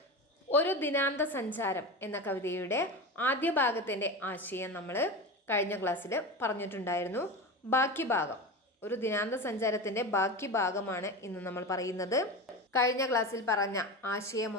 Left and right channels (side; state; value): both; normal; correlation 0.25